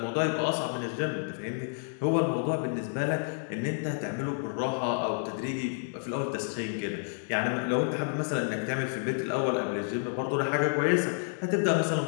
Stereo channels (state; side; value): silent; right; digital silence